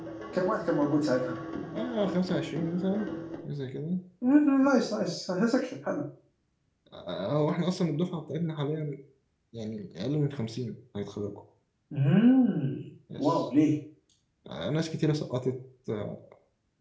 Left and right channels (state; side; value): identical; both; correlation 1.00